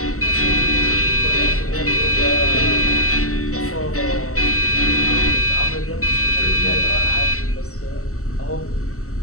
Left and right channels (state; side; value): late; right; 0.64 ms